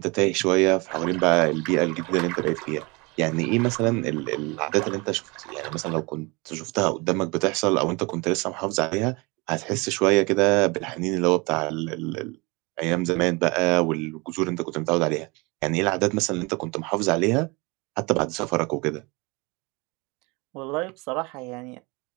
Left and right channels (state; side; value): quieter; left; 26.9 dB